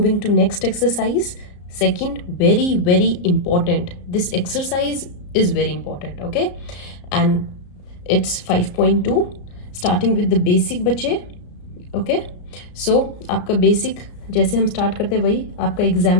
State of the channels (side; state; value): right; late; 34 ms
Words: to next exercise, second, very very important. This exercise is very important. Okay, and it's 5.2 starting with the basic बच्चे. ओके, सो आपका बेसिक जैसे हम स्टार्ट करते हैं वही आपका